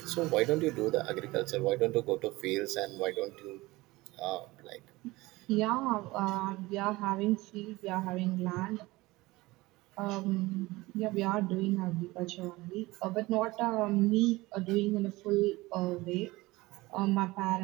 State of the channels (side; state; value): left; quieter; 20.5 dB